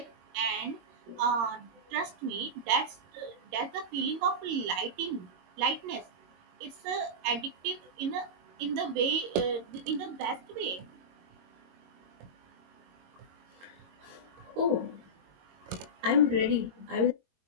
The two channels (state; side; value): late; left; 22 ms